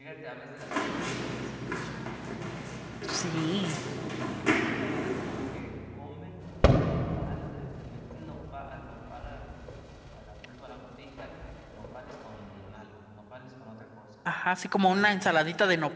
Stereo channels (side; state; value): both; identical; correlation 1.00